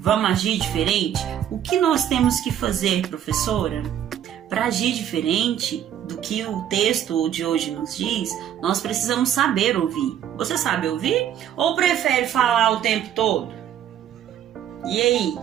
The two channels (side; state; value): left; quieter; 10.2 dB